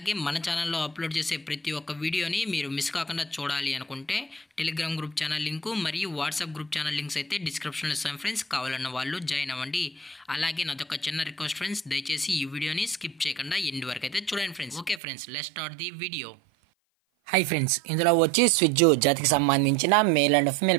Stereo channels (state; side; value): drops out; left; at 15.0 s